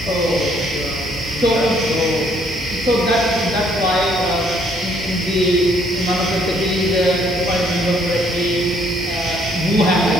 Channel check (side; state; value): both; normal; correlation 0.66